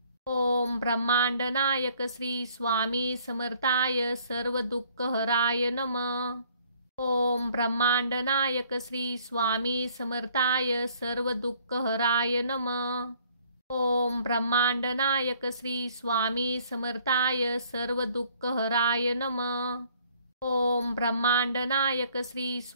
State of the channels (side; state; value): both; inverted; correlation -0.60